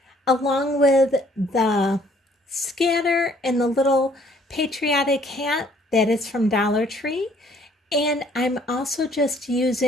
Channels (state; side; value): normal; both; correlation 0.61